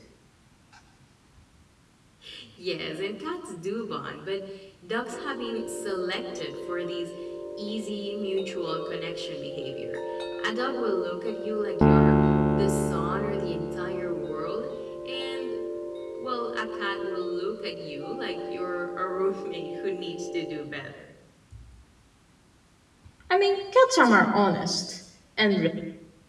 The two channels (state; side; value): identical; both; correlation 1.00